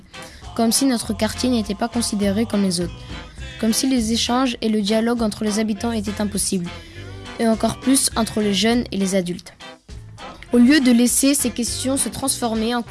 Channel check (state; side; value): identical; both; correlation 1.00